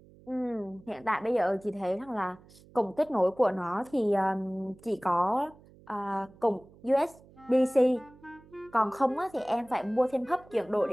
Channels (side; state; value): right; noise; hum, 25 dB below the sound